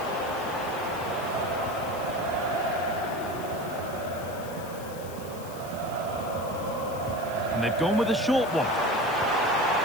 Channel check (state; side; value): noise; left; hiss, 17 dB below the sound